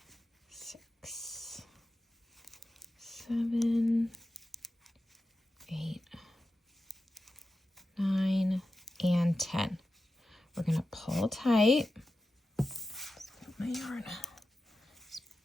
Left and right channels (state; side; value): normal; both; correlation 0.92